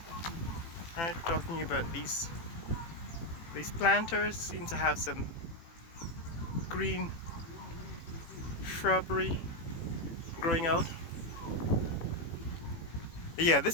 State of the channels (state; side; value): late; right; 18 ms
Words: Alright, we're talking about these planters seem to have some green shrubbery growing out. Yeah,